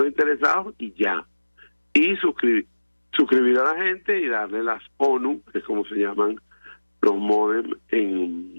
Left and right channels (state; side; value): inverted; both; correlation -1.00